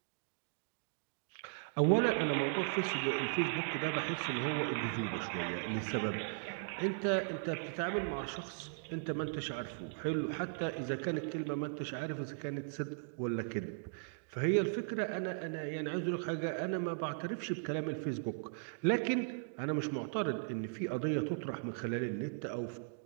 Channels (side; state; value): left; silent; digital silence